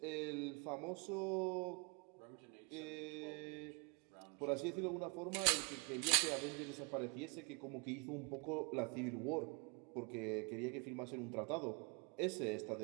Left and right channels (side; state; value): left; quieter; 33.0 dB